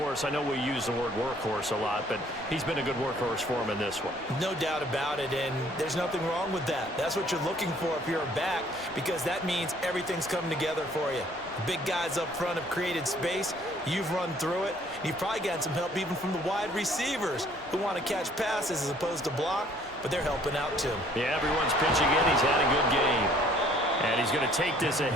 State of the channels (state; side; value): normal; both; correlation 0.59